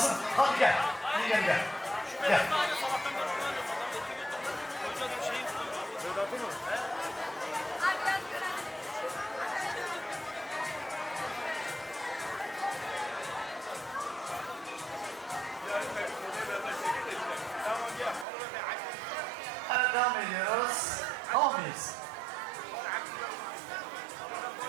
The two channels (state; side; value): drops out; left; at 18.2 s